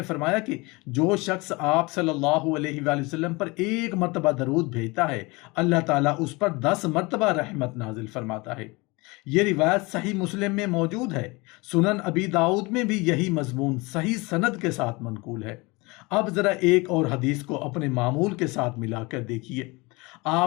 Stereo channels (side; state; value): right; quieter; 25.2 dB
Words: فرمایا کہ جو شخص آپ صلی اللہ علیہ وآلہ وسلم پر 1 مرتبہ درود بھیجتا ہے، اللہ تعالیٰ اس پر 10 مرتبہ رحمت نازل فرماتا ہے۔ یہ روایت صحیح مسلم میں موجود ہے، سنن ابی داؤد میں بھی یہی مضمون صحیح سند کے ساتھ منقول ہے۔ اب ذرا ایک اور حدیث کو اپنے معمول کے ساتھ ملا کر دیکھیے۔